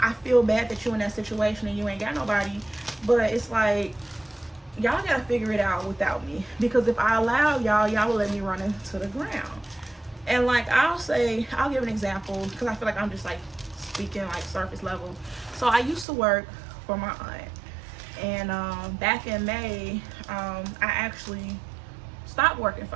feel bad that you in that situation and you ain't got nobody. But it's like, y'all gotta figure it out without me, because if I allow y'all will let me run into the ground. And like, I'll give an example, because I feel like I'm just like speaking like surface level. So I used to work for my aunt, and back in May, I actually stopped working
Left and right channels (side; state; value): left; drops out; at 16.1 s